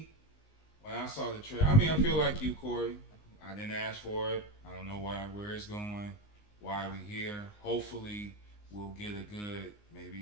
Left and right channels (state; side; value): late; right; 19 ms